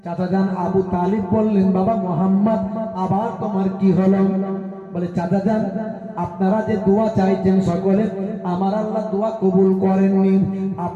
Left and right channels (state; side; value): identical; both; correlation 1.00